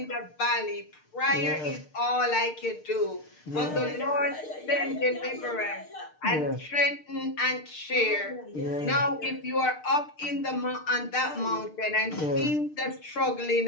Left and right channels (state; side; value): late; right; 6.6 ms